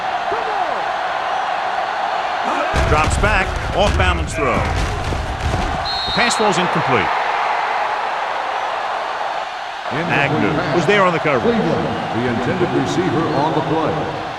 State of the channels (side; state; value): both; identical; correlation 1.00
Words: Drops back, off balance throw. The pass falls incomplete. Agnew was there on the cover. Cleveland, the intended receiver on the play.